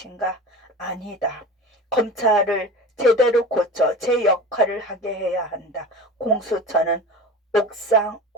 아니다. 검찰을 제대로 고쳐 제 역할을 하게 해야 한다. 공수처는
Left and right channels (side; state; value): both; normal; correlation 0.33